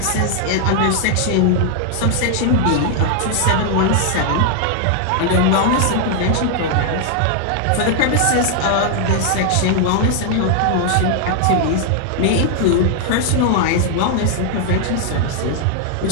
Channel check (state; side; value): different; both; correlation 0.00